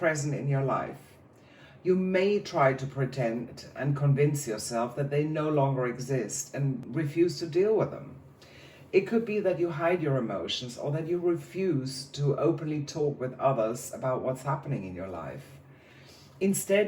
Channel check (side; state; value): both; identical; correlation 1.00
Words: in your life. You may try to pretend and convince yourself that they no longer exist and refuse to deal with them. It could be that you hide your emotions, or that you refuse to openly talk with others about what's happening in your life.